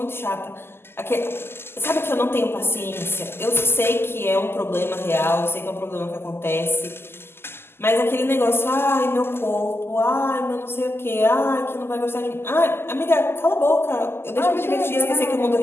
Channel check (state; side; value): late; right; 0.12 ms